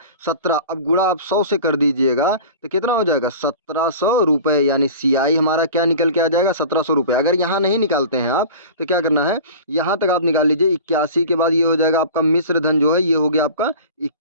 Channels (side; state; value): both; inverted; correlation -0.38